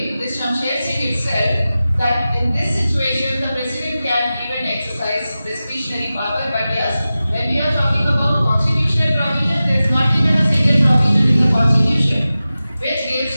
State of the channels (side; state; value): both; inverted; correlation -0.95